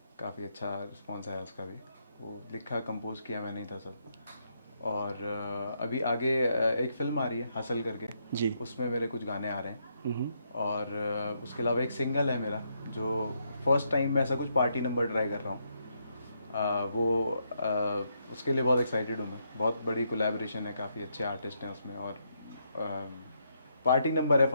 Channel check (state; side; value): inverted; both; correlation -0.77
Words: काफ़ी अच्छा रिस्पॉन्स आया उसका भी। वो लिखा कंपोज किया मैंने ही था सब। और अभी आगे एक फिल्म आ रही है हसल करके, जी। उसमें मेरे कुछ गाने आ रहे हैं। और उसके अलावा एक सिंगल है मेरा जो फर्स्ट टाइम मैं ऐसा कुछ पार्टी नंबर ट्राई कर रहा हूँ। उसके लिए बहुत एक्साइटेड हूँ मैं, बहुत बड़ी कोलैबोरेशन है, काफ़ी अच्छे आर्टिस्ट हैं उसमें। और पार्टी नंबर है